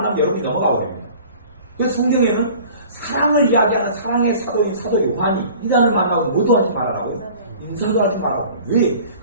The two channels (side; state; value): both; inverted; correlation -0.46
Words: 여러분이 넘어가 버립니다. 그래서 성경에는 사랑을 이야기하는 사랑의 사도인 사도 요한이 이단을 만나고 뭐도 하지 말아라고 인사도 하지 말라고. 왜?